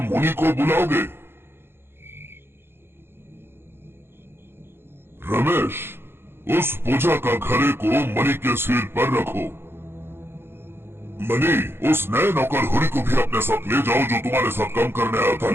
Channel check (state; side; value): late; left; 0.11 ms